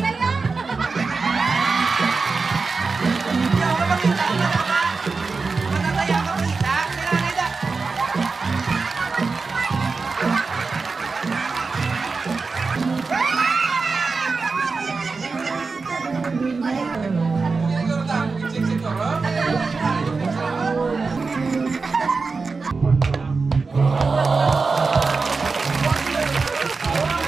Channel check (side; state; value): left; quieter; 4.3 dB